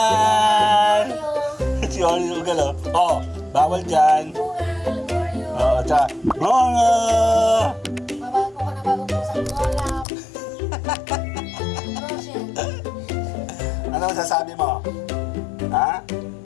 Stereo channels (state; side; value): drops out; right; at 10.1 s